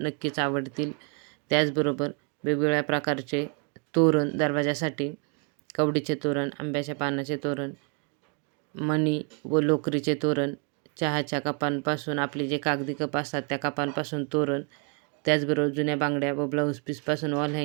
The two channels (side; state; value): left; quieter; 38.1 dB